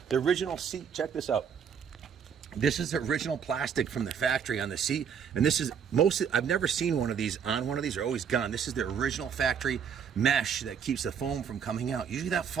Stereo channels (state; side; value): quieter; left; 7.3 dB